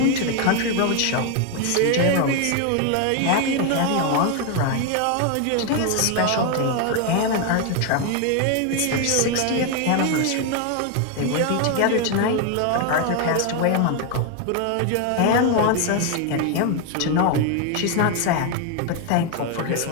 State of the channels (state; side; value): different; both; correlation 0.01